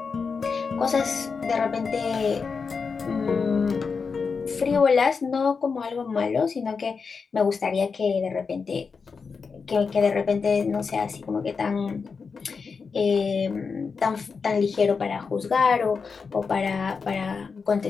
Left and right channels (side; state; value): right; quieter; 5.2 dB